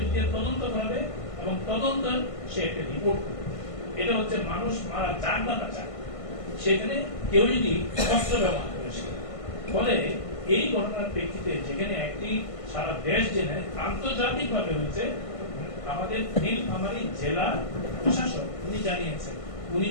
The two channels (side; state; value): right; late; 1.5 ms